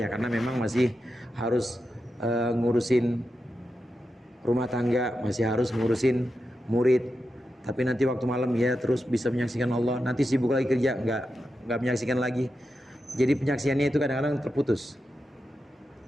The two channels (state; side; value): normal; both; correlation 0.89